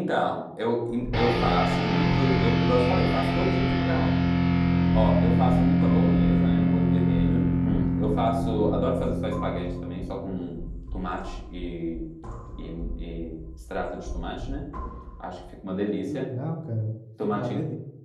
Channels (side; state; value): both; identical; correlation 1.00